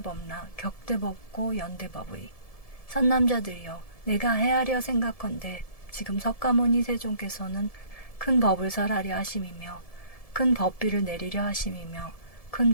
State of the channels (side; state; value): right; late; 1.7 ms